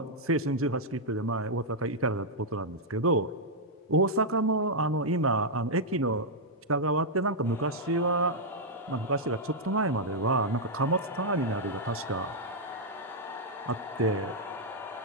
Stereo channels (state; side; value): normal; both; correlation -0.05